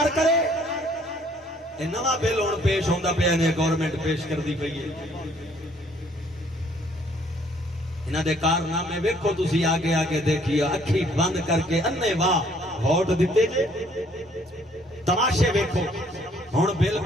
کرے، یہ نواں بل ہوں پیش ہوتا پیا نے گورنمنٹ پیش کر دی پئی ہے، انہاں دے کارنامے ویکھو تسی آگے آگے دیکھیے، اکھی بند کر کے انے واہ ووٹ دیتے جے، تماشے ویکھو۔ ہوں بل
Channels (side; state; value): both; normal; correlation 0.62